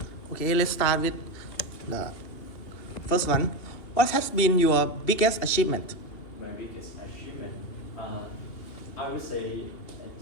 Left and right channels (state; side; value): late; right; 2.8 ms